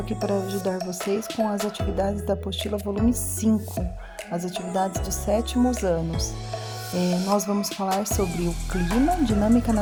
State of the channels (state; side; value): identical; both; correlation 1.00